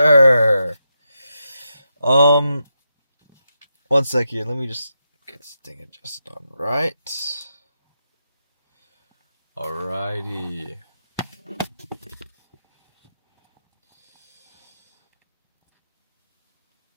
One sec here. Let me just get this thing adjusted on right. Alrighty.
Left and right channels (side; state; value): both; inverted; correlation -0.86